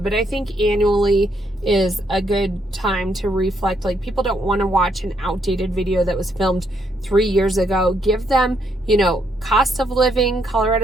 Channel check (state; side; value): normal; both; correlation 0.74